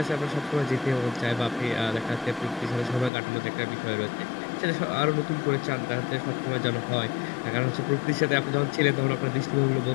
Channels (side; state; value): right; drops out; at 3.1 s